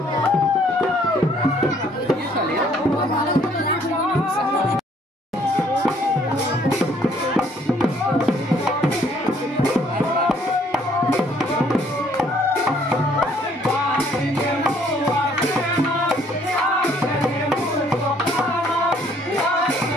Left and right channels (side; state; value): both; normal; correlation 0.63